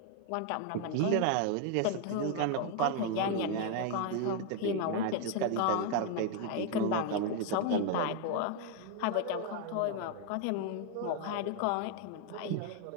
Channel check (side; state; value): both; different; correlation 0.01